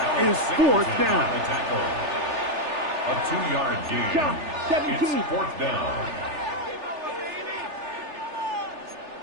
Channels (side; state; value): left; late; 3.4 ms